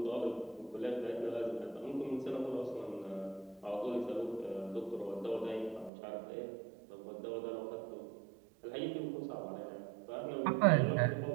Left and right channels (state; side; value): drops out; left; at 5.9 s